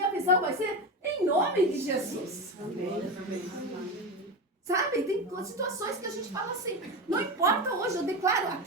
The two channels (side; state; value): both; normal; correlation 0.20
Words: visão vai ser em nome de Jesus. Sabe, tem situações que a gente fala assim, não importa hoje, eu declaro